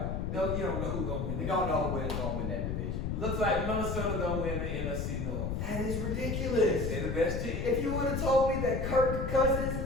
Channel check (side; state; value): left; noise; rumble, 2 dB below the sound